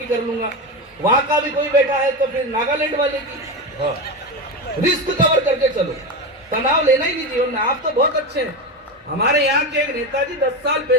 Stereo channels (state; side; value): normal; both; correlation 0.18